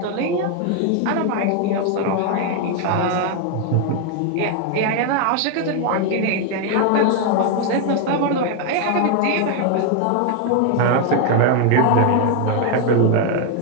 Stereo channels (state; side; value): different; both; correlation 0.00